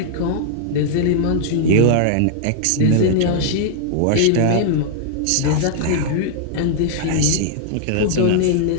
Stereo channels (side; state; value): both; different; correlation -0.01